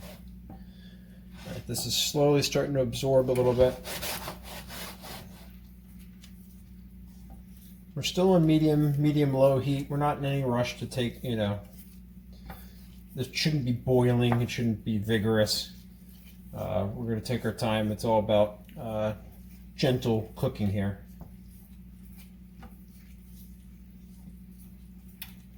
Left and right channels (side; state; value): both; identical; correlation 1.00